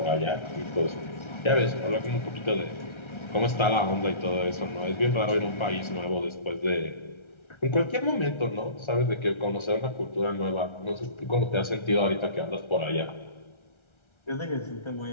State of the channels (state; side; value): late; right; 1.3 ms